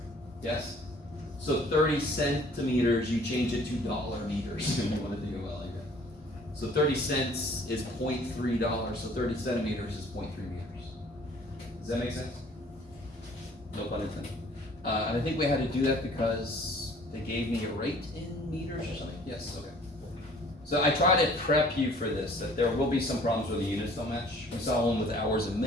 Yes? So 30 centimeters, you change it to dollar meters if you want to think about it like that. So 30 cents is $0.3, so 30 centimeters is 0.3 meters. Does that make sense? No pun intended. And I think we had to do that because they gave me a rate in meters or something. Yes, okay. So I try to prep you for this, that there will be some problems where the units don't match. We saw one with hours and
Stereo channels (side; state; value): both; normal; correlation 0.54